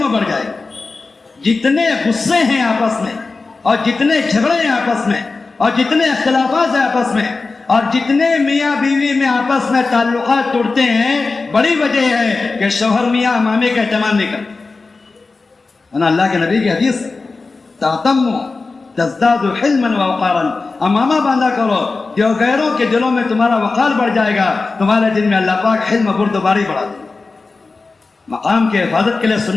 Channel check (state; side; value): quieter; right; 3.9 dB